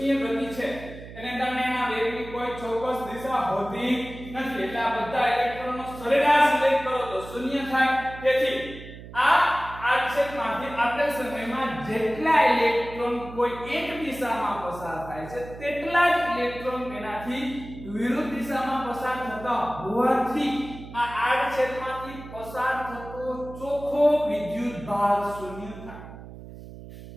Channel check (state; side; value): noise; right; hum, 14 dB below the sound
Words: ગતિ છે. એને કારણે એના વેગની કોઈ ચોક્કસ દિશા હોતી નથી. એટલે આ બધા ઇલેક્ટ્રોનનો સરેરાશ વેગ કરો તો શૂન્ય થાય. તેથી આ આડછેદમાંથી આપેલ સમયમાં જેટલા ઇલેક્ટ્રોન કોઈ એક દિશામાં પસાર થાય છે તેટલા જ ઇલેક્ટ્રોન તેનાથી વિરુદ્ધ દિશામાં પસાર થતા હોવાથી આ આડછેદમાંથી પસાર થતો ચોખ્ખો વિદ્યુત ભાર શૂન્ય થાય.